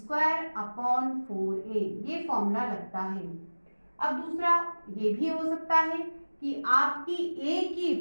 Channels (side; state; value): both; inverted; correlation -1.00